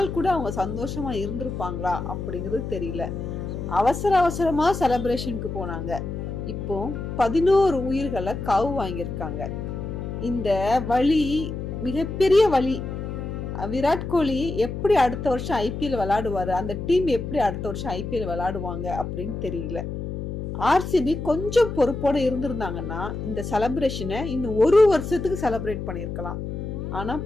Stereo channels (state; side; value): noise; left; hum, 6 dB below the sound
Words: கூட அவங்க சந்தோஷமா இருந்திருப்பாங்களா அப்படிங்கிறது தெரியல. அவசர அவசரமா செலிப்ரேஷனுக்கு போனாங்க. இப்போ 11 உயிர்களை காவு வாங்கியிருக்காங்க. இந்த வழி மிகப்பெரிய வழி. விராட் கோலி எப்படி அடுத்த வருஷம் ஐபிஎல் விளையாடுவாரு, அந்த டீம் எப்படி அடுத்த வருஷம் ஐபிஎல் விளையாடுவாங்க அப்படின்னு தெரியல. ஆர்சிபி கொஞ்சம் பொறுப்போட இருந்திருந்தாங்கன்னா இந்த செலிப்ரேஷனை இன்னும் 1 வருஷத்துக்கு செலிப்ரேட் பண்ணிருக்கலாம். ஆனா